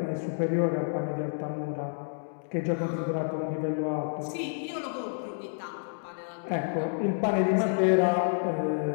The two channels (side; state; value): right; silent; digital silence